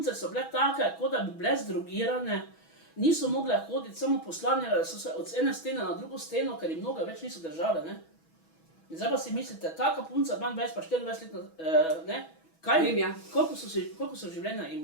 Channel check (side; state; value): right; late; 6.1 ms